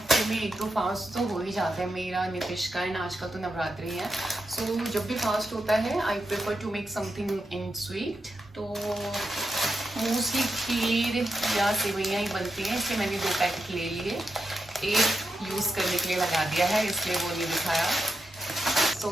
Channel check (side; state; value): both; normal; correlation 0.86